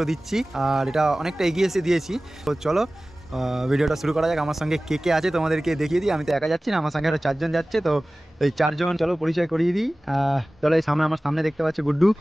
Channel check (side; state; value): both; normal; correlation 0.97